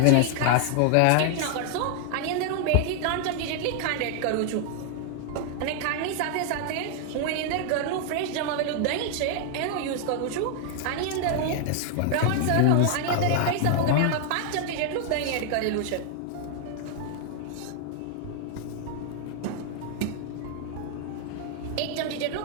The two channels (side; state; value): both; different; correlation 0.00